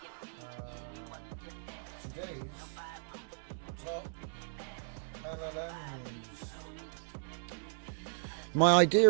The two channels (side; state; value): left; silent; digital silence